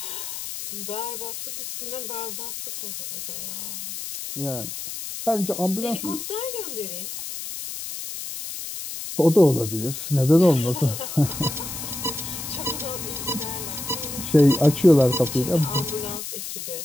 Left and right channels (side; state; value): left; noise; hiss, 7 dB below the sound